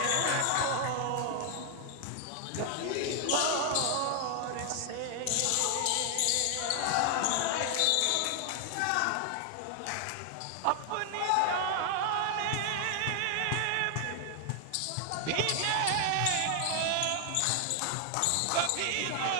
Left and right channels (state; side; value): different; both; correlation 0.00